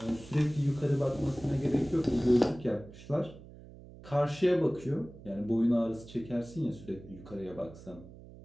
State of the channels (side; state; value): right; noise; hum, 18 dB below the sound